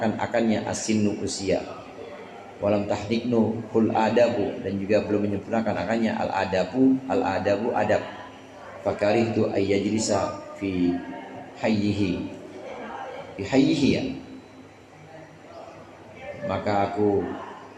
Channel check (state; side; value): identical; both; correlation 1.00